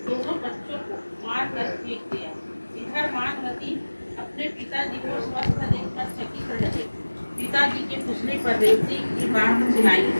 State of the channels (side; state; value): both; inverted; correlation -1.00